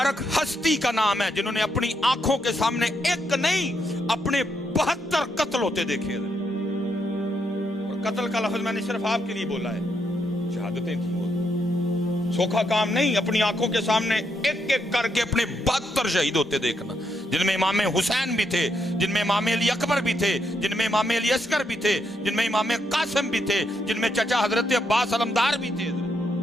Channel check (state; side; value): normal; both; correlation 0.78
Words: ہستی کا نام ہے جنہوں نے اپنی آنکھوں کے سامنے ایک نہیں اپنے 72 قتل ہوتے دیکھے. اور قتل کا لفظ میں نے صرف آپ کے لیے بولا ہے, شہادتیں تھیں. سوکھا کام نہیں, اپنی آنکھوں کے سامنے ایک ایک کر کے اپنے 72 شہید ہوتے دیکھنا, جن میں امام حسین بھی تھے, جن میں امام علی اکبر بھی تھے, جن میں امام علی اصغر بھی تھے, جن میں امام قاسم بھی تھے, جن میں چچا حضرت عباس علمدار بھی تھے.